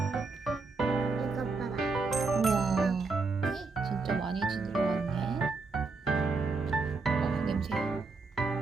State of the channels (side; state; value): left; quieter; 4.1 dB